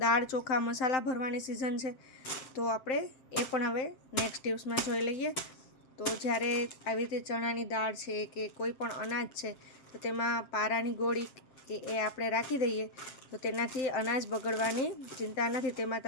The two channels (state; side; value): late; right; 7.8 ms